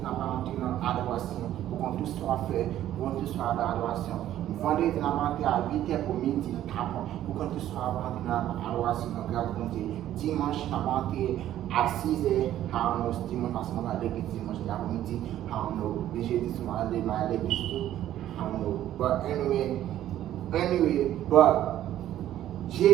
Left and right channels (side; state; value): left; quieter; 12.4 dB